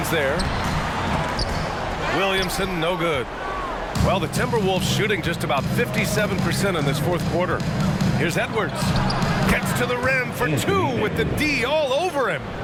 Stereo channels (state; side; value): identical; both; correlation 1.00